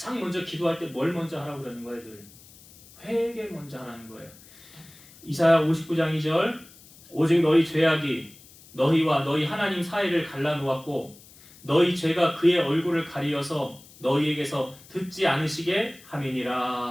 먼저 기도할 때 뭘 먼저 하라고 그러는 거예요? 늘 회개 먼저 하라는 거예요. 이사야 59장 2절 오직 너희 죄악이 너희와 너희 하나님 사이를 갈라놓았고 너희 죄가 그의 얼굴을 가리어서 너희에게서 듣지 않으시게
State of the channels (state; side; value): noise; left; hiss, 23 dB below the sound